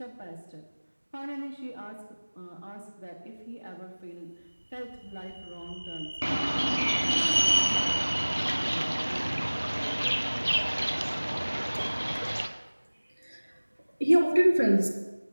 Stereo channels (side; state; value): both; inverted; correlation -1.00